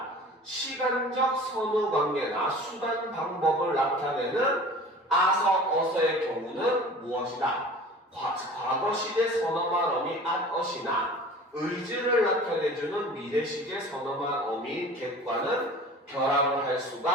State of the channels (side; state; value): both; normal; correlation 0.42